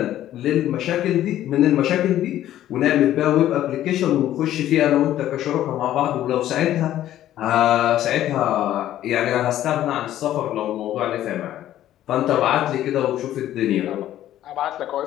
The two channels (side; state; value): right; quieter; 12.7 dB